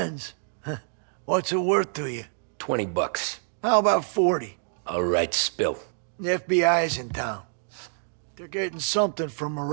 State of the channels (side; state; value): left; silent; 60 dB below the other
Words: What's it worth to you? $20. How about 40? All right, spill. The FBI's in town. They're getting something from